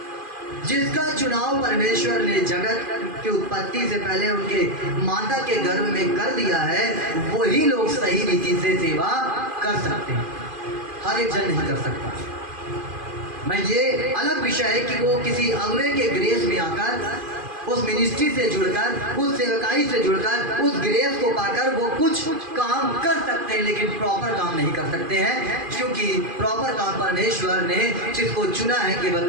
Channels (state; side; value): late; left; 2.5 ms